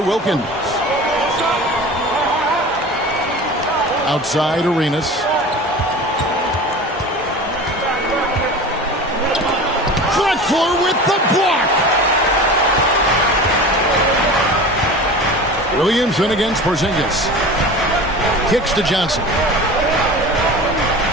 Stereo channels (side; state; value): both; normal; correlation 0.35